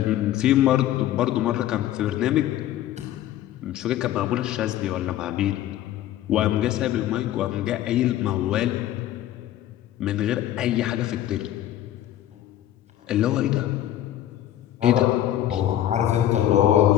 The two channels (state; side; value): quieter; right; 12.6 dB